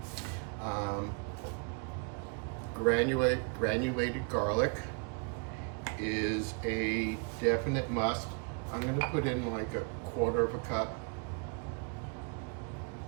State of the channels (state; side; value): quieter; left; 36.3 dB